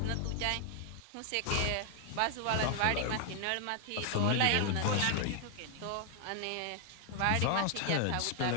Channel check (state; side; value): different; both; correlation 0.00